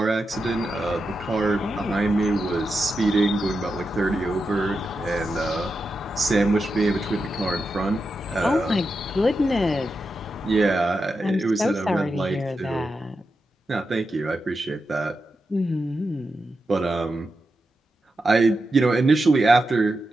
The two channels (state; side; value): normal; both; correlation 0.88